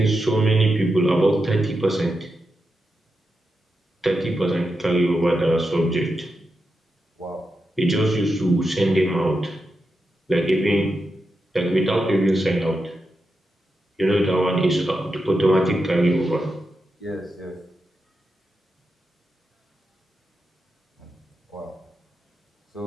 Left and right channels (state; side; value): normal; both; correlation 0.87